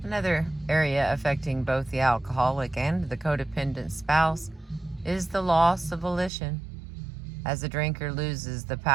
Another area affecting both the alcoholic and the codependent spouse is the loss of volition, as the drinker loses the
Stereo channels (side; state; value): left; drops out; at 6.3 s